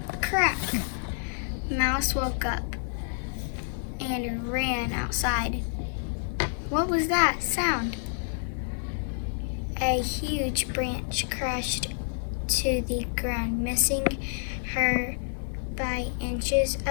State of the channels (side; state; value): right; silent; digital silence